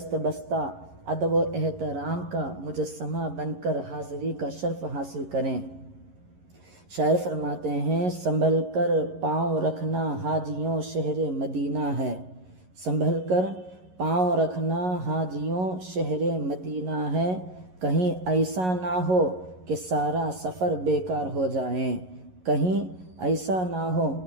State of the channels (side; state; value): left; late; 11 ms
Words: بستہ ادب و احترام کا مجسمہ بن کر حاضری کا شرف حاصل کریں۔ شاعر فرماتے ہیں سنبھل کر پاؤں رکھنا حاجیوں شہر مدینہ ہے، سنبھل کر پاؤں رکھنا حاجیوں شہر مدینہ ہے، کہیں ایسا نہ ہو کہ سارا سفر بیکار ہو جائیں، کہیں ایسا نہ ہو